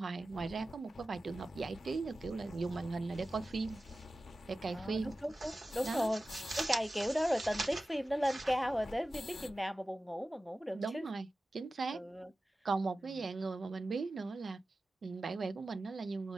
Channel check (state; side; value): normal; both; correlation 0.95